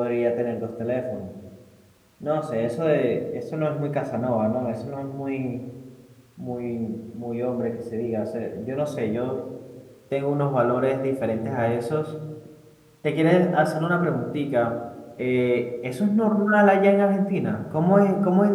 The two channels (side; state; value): both; identical; correlation 1.00